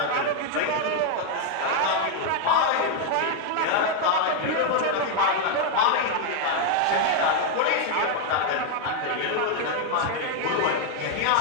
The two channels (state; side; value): different; both; correlation 0.01